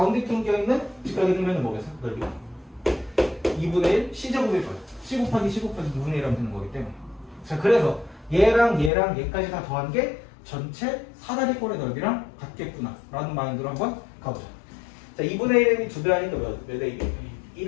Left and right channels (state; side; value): drops out; right; at 8.9 s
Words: 낑겨있는 직각의 등변은 뭐겠어? 넓이가 2분의 1 C제곱일 거예요. C 곱하기 C 곱하기 2분의 1 하면 되는 거기 때문에. 자, 그래서 얘랑 얘까지 다 더한 게 전체 사다리꼴의 넓이랑 같겠구나 라는 마인드로 한번 가보자. 자, 2분의 1이 2배 하니까 몇 AB? 1